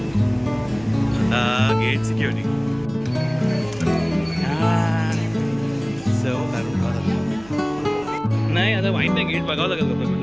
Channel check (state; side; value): noise; right; hum, 21 dB below the sound